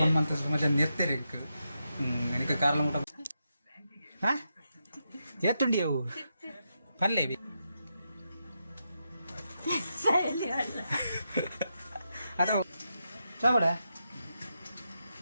ಮಾಡ್ತಾ ಮಧ್ಯ ನಿರ್ತಾರೆ ನನಗೆ ಕಾರ್ಲ ಊಟ ಹಾಂ ಎತ್ತುಂಡಿ ಅವು ಅಲ್ಲೇ ಅದು ಚಾವಡ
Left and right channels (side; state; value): both; inverted; correlation -0.85